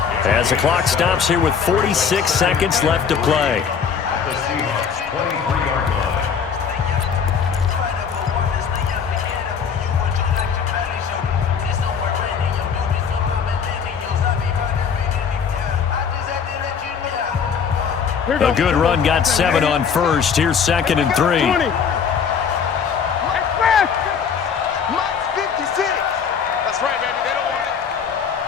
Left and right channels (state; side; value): quieter; right; 6.8 dB